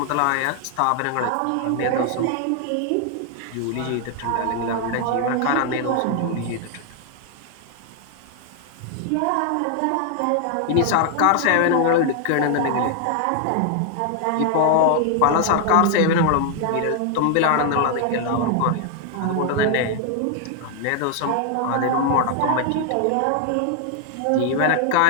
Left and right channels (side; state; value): both; different; correlation 0.00